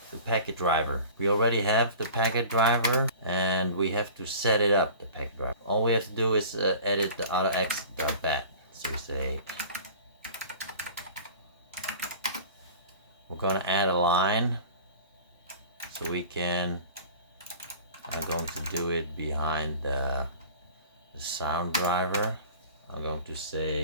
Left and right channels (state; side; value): inverted; both; correlation -0.41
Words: the packet driver. We already have the packet driver and we have to set it up, the packet driver. All we have to do is edit the AutoExec.bat. So we say, we're going to add a line so we can, I'm going to do it behind the sound driver. I'm going to